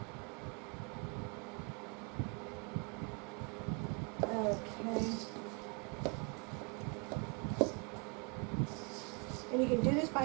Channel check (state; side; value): quieter; left; 33.7 dB